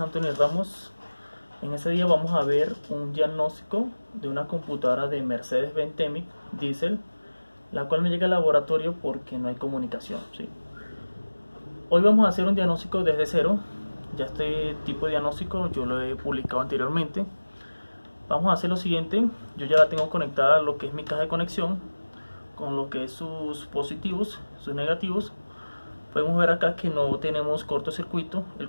Antonio Ramos. En este día vamos a ver un diagnóstico de una computadora de Mercedes-Benz Temic Diesel, la cual me llega al laboratorio porque no hay comunicación, ¿sí? Hoy vamos a hacer un diagnóstico desde cero. Ya este tipo de diagnóstico yo lo he publicado anteriormente. Vamos a hacer lo siguiente: yo ya la tengo conectada a lo que es mi caja de conexión, con lo que es sus positivos, sus negativos. Podemos ver acá que no tenemos cortocircuito, el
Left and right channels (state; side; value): inverted; both; correlation -1.00